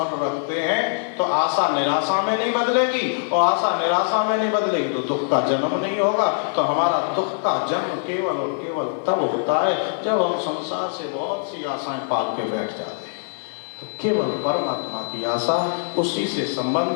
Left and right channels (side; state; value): right; silent; 55 dB below the other